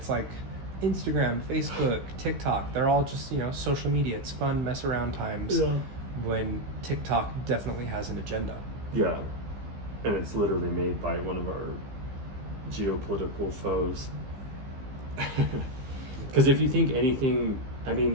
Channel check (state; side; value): late; left; 15 ms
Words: like Instagram, Facebook, TikTok, they're all just, you know, social media. It's fun, mess around times. Yeah. When TikTok definitely has an agenda. Yeah. And it's literally made by one of our geopolitical foes. Because if you think anything, I